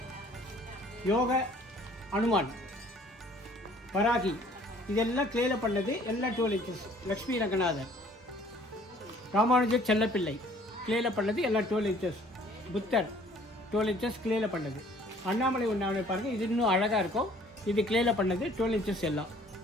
யோக அனுமான், வராகி இதெல்லாம் கிளேயில் பண்ணது எல்லாம் 12 inches. லக்ஷ்மி ரங்கநாதர், ராமானுஜர் செல்லப்பிள்ளை கிளேயில் பண்ணது எல்லாம் 12 inches. புத்தர் 12 inches கிளேயில் பண்ணது. அண்ணாமலை உண்ணாமலை பாருங்கள், இது இன்னும் அழகாக இருக்கும். இது கிளேயில் பண்ணது 12 inches எல்லாம்.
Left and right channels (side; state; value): both; normal; correlation 0.56